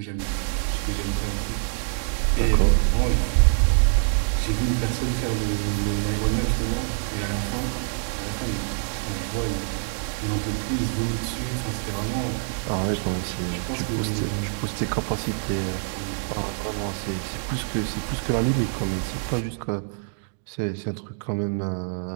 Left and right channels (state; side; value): silent; left; digital silence